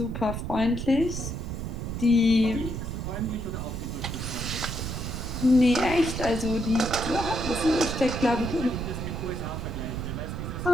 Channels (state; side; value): noise; right; rumble, 5 dB below the sound